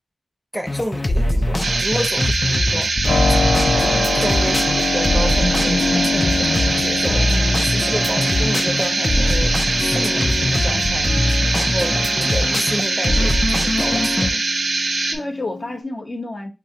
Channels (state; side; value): normal; both; correlation 0.93